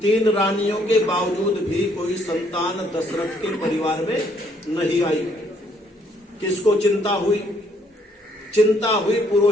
3 रानियों के बावजूद भी कोई संतान दशरथ के परिवार में नहीं आई। किसको चिंता हुई? चिंता हुई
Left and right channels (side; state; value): both; normal; correlation 0.67